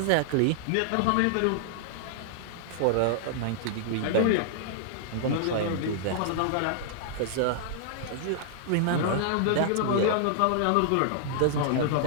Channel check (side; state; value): both; different; correlation -0.01